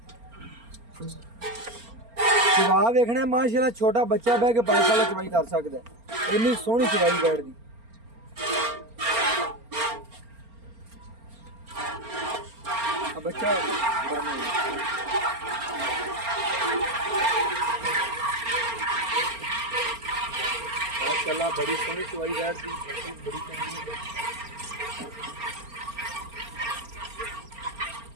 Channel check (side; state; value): left; late; 4.3 ms